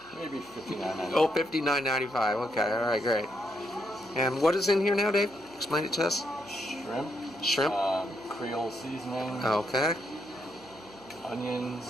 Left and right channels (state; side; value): noise; left; hum, 30 dB below the sound